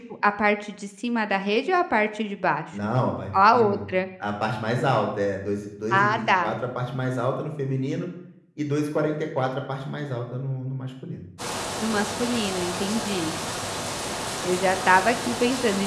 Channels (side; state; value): both; identical; correlation 1.00